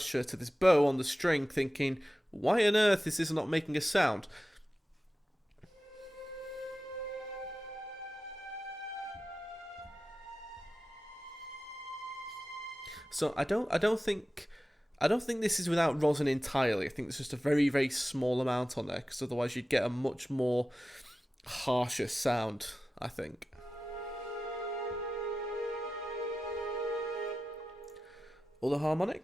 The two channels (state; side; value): normal; both; correlation 0.94